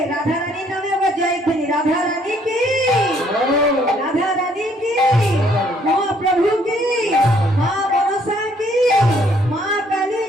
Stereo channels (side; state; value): both; normal; correlation 0.65